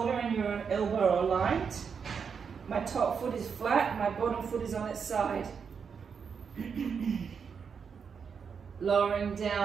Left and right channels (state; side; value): quieter; left; 6.3 dB